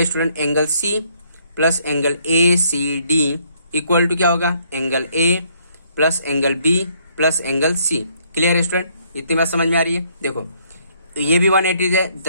student, angle C plus angle A C D equal to क्या होगा, angle A plus angle B plus angle C. Clear है स्टूडेंट? इतनी बात समझ में आ रही है? देखो ये भी 180 है,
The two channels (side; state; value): both; inverted; correlation -0.68